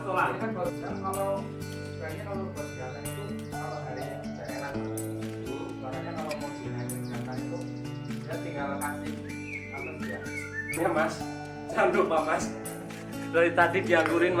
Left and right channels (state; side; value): identical; both; correlation 1.00